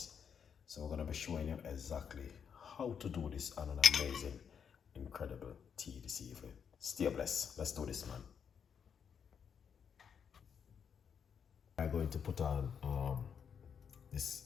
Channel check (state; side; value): quieter; right; 7.3 dB